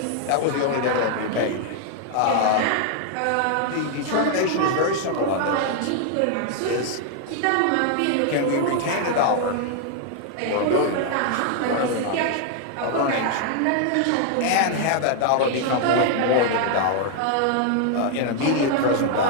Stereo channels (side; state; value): both; different; correlation 0.00